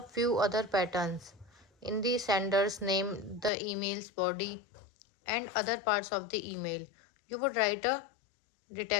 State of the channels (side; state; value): right; drops out; at 3.5 s